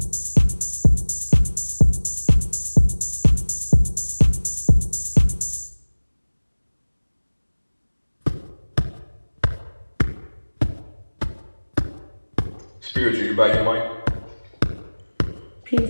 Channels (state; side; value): inverted; both; correlation -1.00